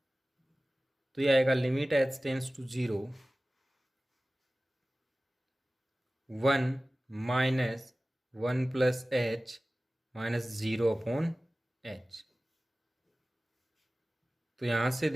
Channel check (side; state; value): both; normal; correlation 0.97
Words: तो ये आएगा limit H tends to 0 1 minus 1 plus H minus 0 upon H. तो यहां से